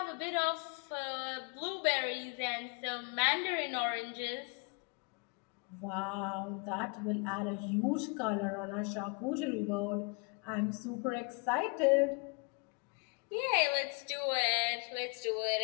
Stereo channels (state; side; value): quieter; right; 33.9 dB